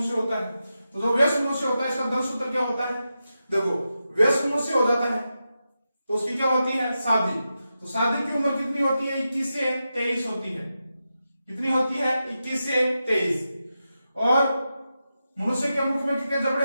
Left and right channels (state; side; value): inverted; both; correlation -0.89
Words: होता है। तो जो वयस्क मनुष्य होता है इसका दंतसूत्र क्या होता है, देखो वयस्क मनुष्य हो जाता है तो उसकी क्या होती है, शादी। तो शादी की उम्र कितनी होती है, 21 से 23 होती है। कितनी होती है, 21 से 23। और मनुष्य के मुख में कितने जबड़े